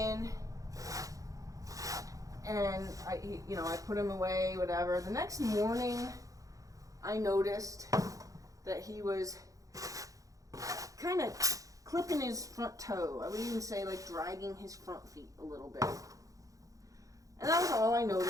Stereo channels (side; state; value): left; late; 0.16 ms